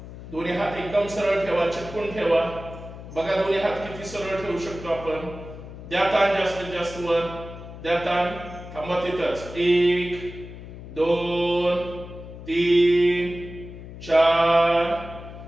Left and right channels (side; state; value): left; noise; hum, 13 dB below the sound